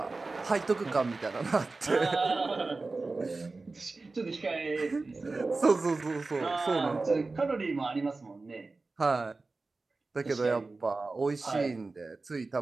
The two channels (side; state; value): left; quieter; 3.6 dB